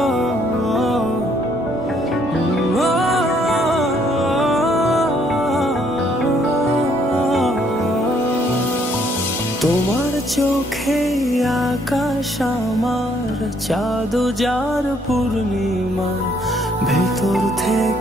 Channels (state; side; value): normal; both; correlation 0.67